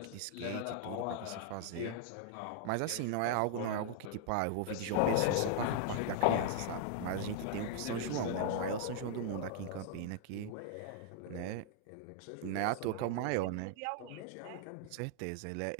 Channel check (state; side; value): different; both; correlation -0.01